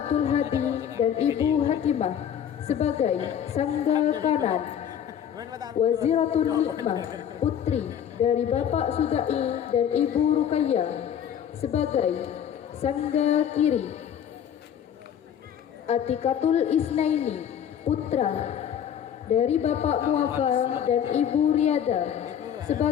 Hadi dan Ibu Hakimah sebagai sangga kanan. Waziratun Nikmah, putri dari Bapak Sugai dan Ibu Ruqayyah sebagai sangga kiri. Atikatul Isnaini, putra dari Bapak Muafa dan Ibu Riada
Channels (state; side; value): quieter; right; 9.1 dB